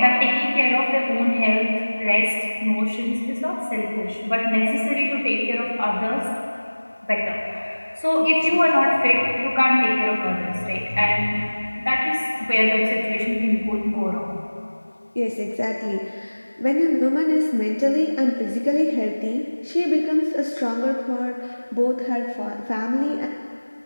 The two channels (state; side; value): inverted; both; correlation -1.00